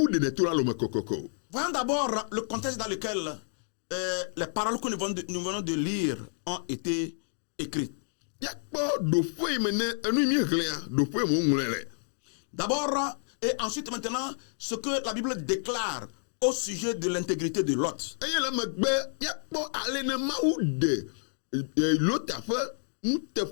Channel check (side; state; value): right; silent; digital silence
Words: ɖenɛ to la lome kokoko. Voyons d'abord le contexte dans lequel les paroles que nous venons de lire ont été écrites. Yakpɔ ɖoƒe yi me ne enu yi mi hlẽa ɖoƒe me woŋlɔe le. D'abord et ensuite maintenant ce que la Bible déclare au sujet de l'intégrité de Lot. Eye le megbe yakpɔ ale ne Mawu ɖe Lota ƒe